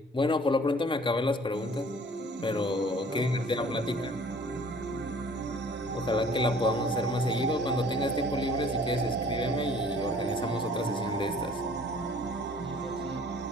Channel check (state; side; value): normal; both; correlation 0.53